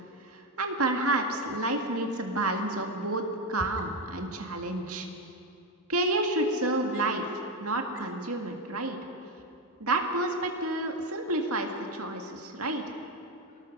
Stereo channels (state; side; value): normal; both; correlation 0.11